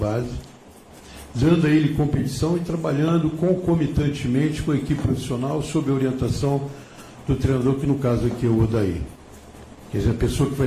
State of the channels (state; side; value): identical; both; correlation 1.00